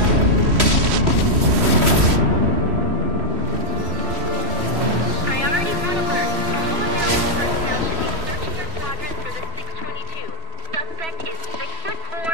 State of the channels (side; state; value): left; late; 3.1 ms